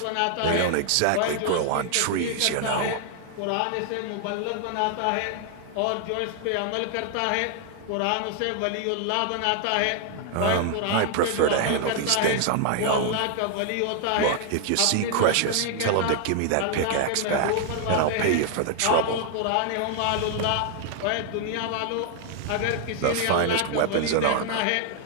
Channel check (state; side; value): different; both; correlation 0.00